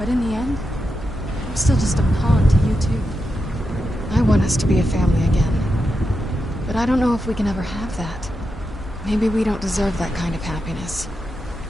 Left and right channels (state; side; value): normal; both; correlation 0.87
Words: in the end, I'm still just a pawn to you two. I want us to be a family again. But I don't know if we can ever have that. Maybe we don't deserve that kind of happiness.